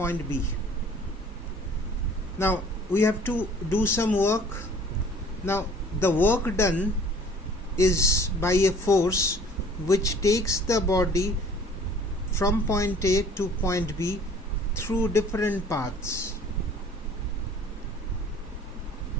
B. Now we have to do some work. Now the work done is by a force which takes the body from point A to point B through different paths.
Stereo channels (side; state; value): both; normal; correlation 0.51